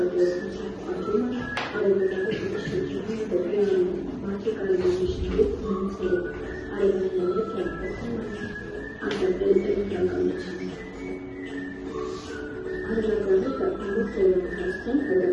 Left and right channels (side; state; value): both; identical; correlation 1.00